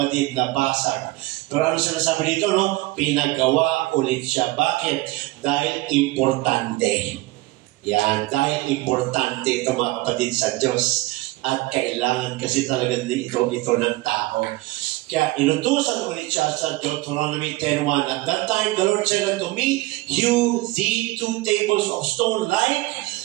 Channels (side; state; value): left; quieter; 19.7 dB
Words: nabasag. Pero ano sinasabi dito, no? Pinagawa ulit siya. Bakit? Dahil importante. Yan, dahil importante ito mga kapatid sa Diyos. At kailangan kasi talaga ito ng tao. Kaya inutusan ulit siya sa Deuteronomy 10:1. At that time the Lord said unto me, hew thee 2 tables of stone like